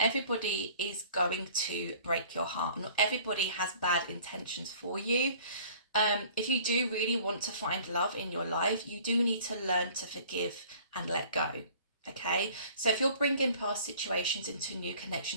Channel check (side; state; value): both; inverted; correlation -0.50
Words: everybody is going to break your heart. Not everybody has bad intentions for you. If you do really want to find love in your life, you do need to learn to forgive and let go, okay? So if you're bringing past situations into new